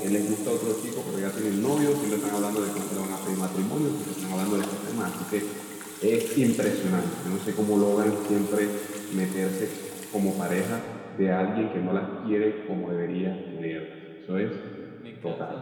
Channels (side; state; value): both; identical; correlation 1.00